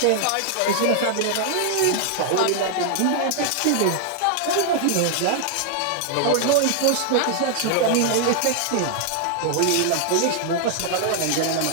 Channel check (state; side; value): different; both; correlation 0.00